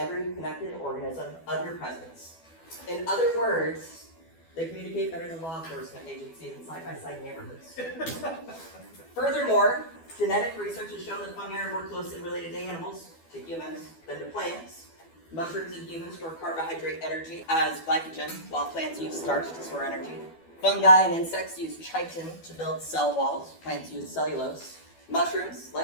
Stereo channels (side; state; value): right; late; 12 ms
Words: connected organism of your presence. In other words, they communicate better than law enforcement agencies in side-by-side neighborhoods. Furthermore, genetic research has shown that fungi are more closely related to animals, to humans, than to plants. Mushrooms and humans store carbohydrate energy as glycogen, while plants use starch to store energy. Fungi and insects use chitin to build cell walls. Plants use cellulose. Mushrooms,